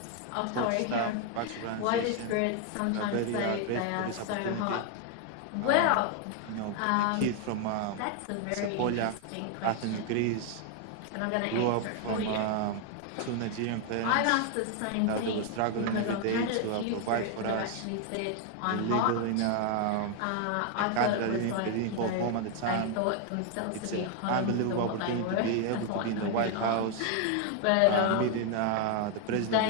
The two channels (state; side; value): different; both; correlation 0.00